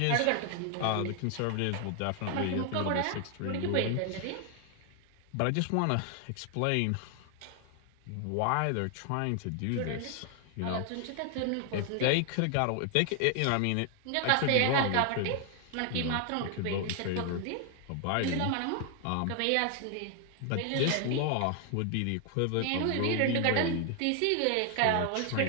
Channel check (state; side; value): different; both; correlation 0.00